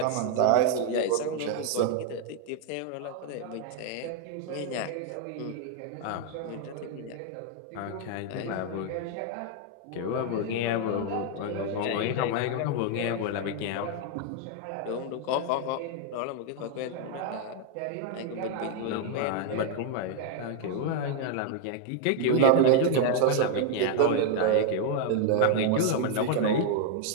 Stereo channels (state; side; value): different; both; correlation 0.00